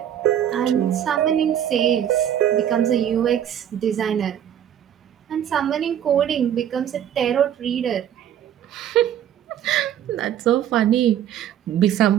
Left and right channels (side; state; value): left; quieter; 10.2 dB